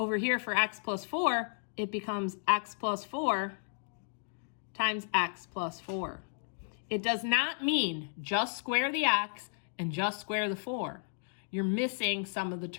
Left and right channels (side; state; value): right; silent; digital silence